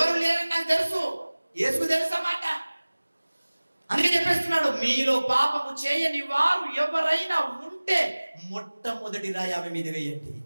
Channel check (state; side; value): inverted; both; correlation -1.00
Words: లేరని నాకు తెలుసు, యేసుకు తెలుసా మాట. అందుకే చెప్పేస్తున్నాడు, మీలో పాపము చేయని వారు ఎవరైనా ఉంటే మొట్టమొదటి రాయి ఆమె మీద వేయండి.